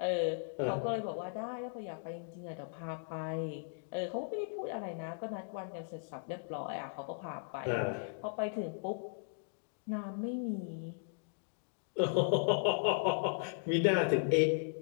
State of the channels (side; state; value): right; silent; digital silence